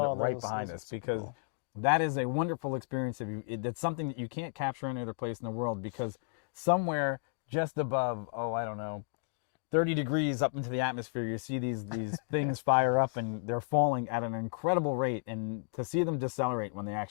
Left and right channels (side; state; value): right; silent; digital silence